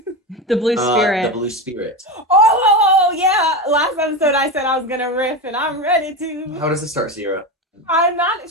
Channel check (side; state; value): both; normal; correlation 0.19